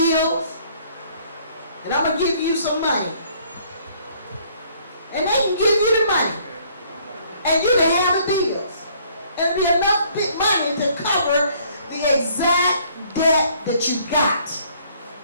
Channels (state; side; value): inverted; both; correlation -0.61